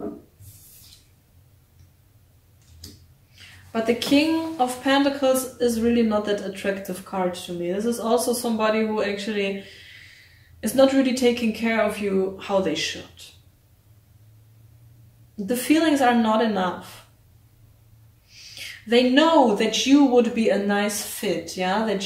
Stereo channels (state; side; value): identical; both; correlation 1.00